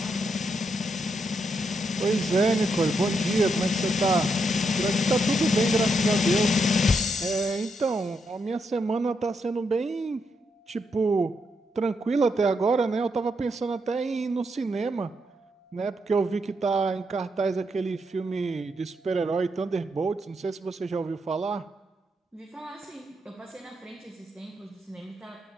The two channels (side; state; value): both; normal; correlation 0.80